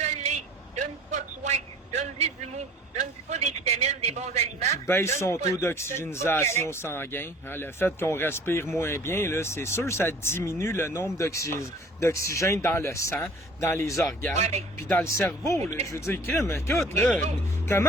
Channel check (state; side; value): normal; both; correlation 0.48